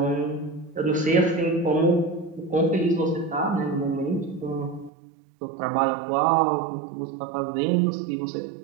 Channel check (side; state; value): left; drops out; at 4.9 s